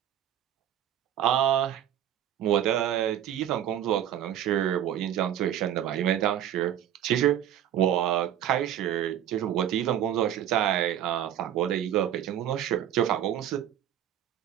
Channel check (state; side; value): quieter; left; 10.7 dB